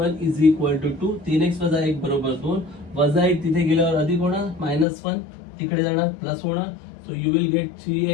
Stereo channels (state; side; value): drops out; right; at 4.9 s